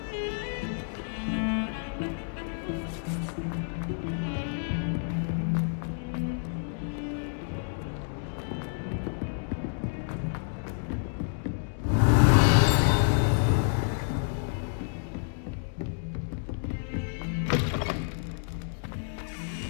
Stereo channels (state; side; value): silent; right; digital silence